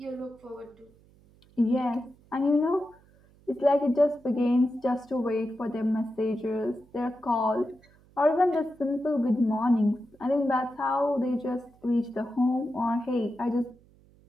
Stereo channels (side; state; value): right; noise; hum, 29 dB below the sound